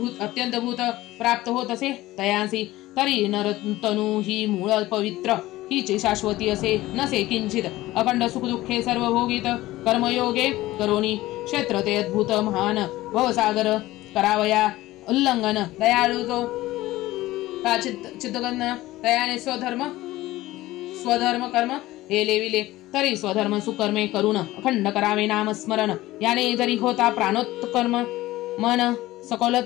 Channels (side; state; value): right; quieter; 17.2 dB